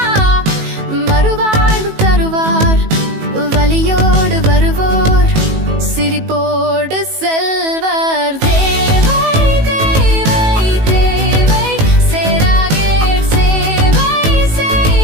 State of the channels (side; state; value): left; late; 18 ms